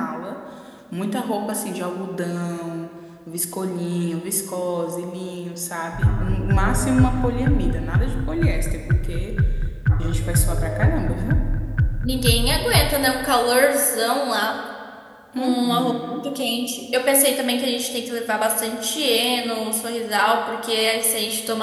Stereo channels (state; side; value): identical; both; correlation 1.00